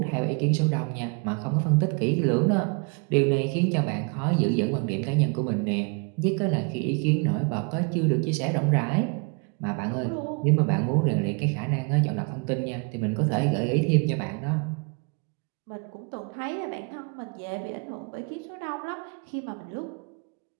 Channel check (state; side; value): quieter; left; 34.1 dB